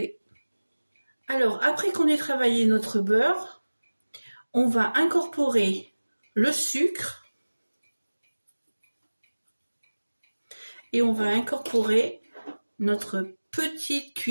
Alors, après qu'on ait travaillé notre beurre, on va incorporer le sucre et on va incorporer notre petite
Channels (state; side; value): inverted; both; correlation -1.00